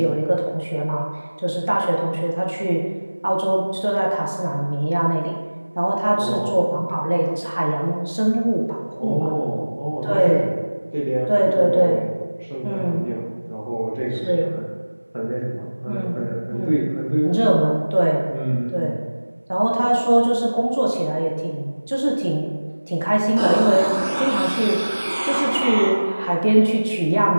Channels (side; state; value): both; inverted; correlation -1.00